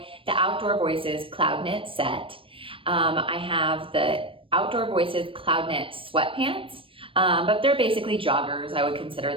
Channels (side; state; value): left; late; 0.25 ms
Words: the Outdoor Voices CloudKnit set. I have the Outdoor Voices CloudKnit Sweatpants, but they're basically joggers. I would consider